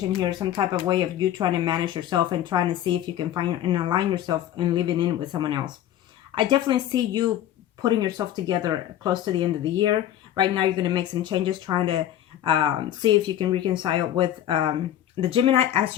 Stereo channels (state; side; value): quieter; right; 11.7 dB